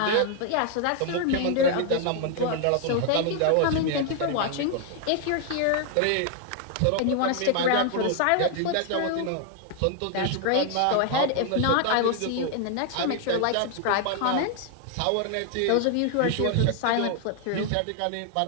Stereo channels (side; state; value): both; different; correlation 0.00